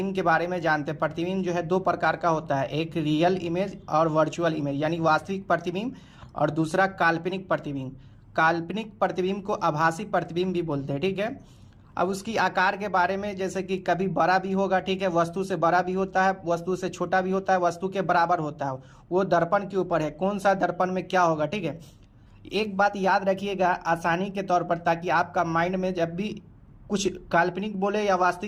के बारे में जानते हैं। प्रतिबिंब जो है दो प्रकार का होता है, एक रियल इमेज और वर्चुअल इमेज यानी वास्तविक प्रतिबिंब, और दूसरा काल्पनिक प्रतिबिंब। काल्पनिक प्रतिबिंब को आभासी प्रतिबिंब भी बोलते हैं। ठीक है, अब उसकी आकार के बारे में, जैसे कि कभी बड़ा भी होगा, ठीक है, वस्तु से बड़ा भी होता है, वस्तु से छोटा भी होता है, वस्तु के बराबर होता है। वो दर्पण के ऊपर है, कौन सा दर्पण में क्या होगा। ठीक है, एक बात याद रखिएगा आसानी के तौर पर, ताकि आपका माइंड में जब भी कुछ काल्पनिक बोले या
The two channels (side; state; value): both; identical; correlation 1.00